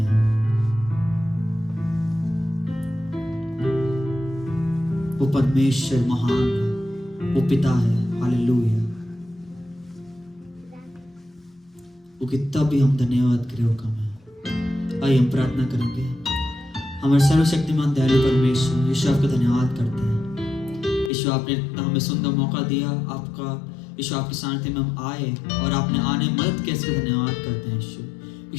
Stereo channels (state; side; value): drops out; right; at 21.1 s